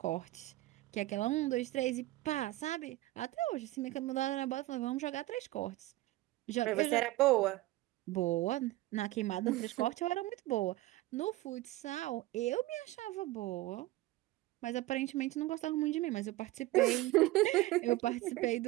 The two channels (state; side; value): quieter; left; 17.7 dB